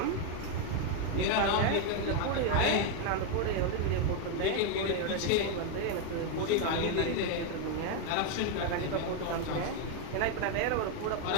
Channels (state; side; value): different; both; correlation 0.01